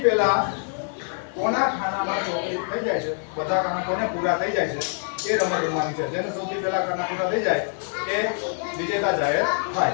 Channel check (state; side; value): silent; right; 58 dB below the other